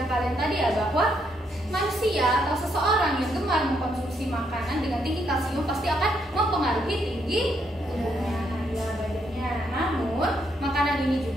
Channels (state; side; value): normal; both; correlation 0.75